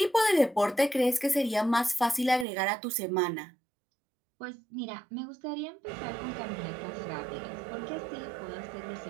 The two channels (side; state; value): left; drops out; at 2.5 s